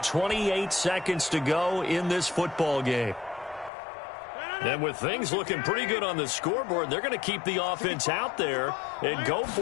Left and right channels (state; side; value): drops out; right; at 3.7 s